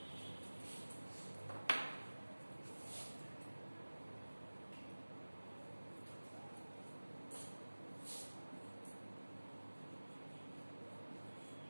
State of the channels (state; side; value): inverted; both; correlation -1.00